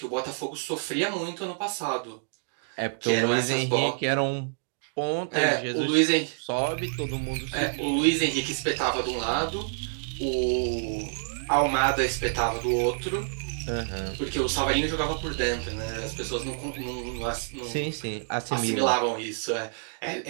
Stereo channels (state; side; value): silent; left; digital silence